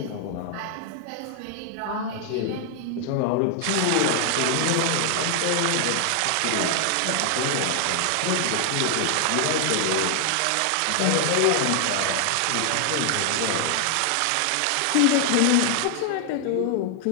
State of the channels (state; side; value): different; both; correlation 0.00